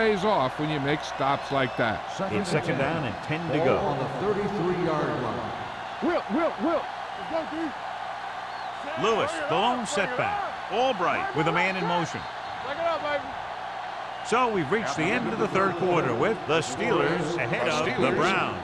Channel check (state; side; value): identical; both; correlation 1.00